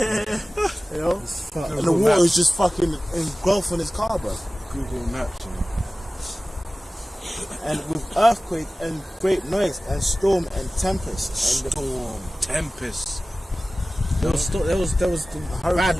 you know, Fuck. and the water is just fucking engulfing his car, bro. Google Maps. And with earthquake and great noise and storm and tempest and the Storm, tempest. There was the bad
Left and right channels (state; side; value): normal; both; correlation 0.97